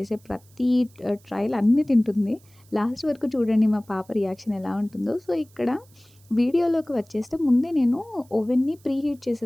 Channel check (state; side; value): noise; right; hiss, 30 dB below the sound